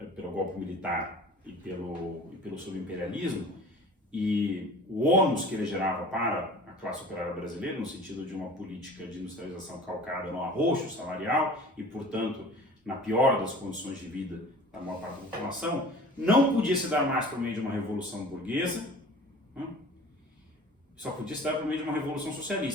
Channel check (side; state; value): both; normal; correlation 0.43